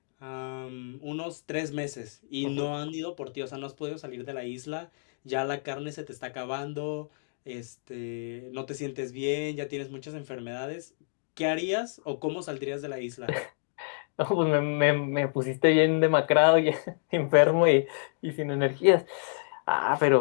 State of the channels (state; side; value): silent; right; digital silence